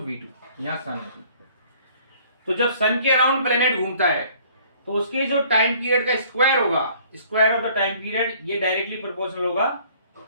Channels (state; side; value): inverted; both; correlation -0.56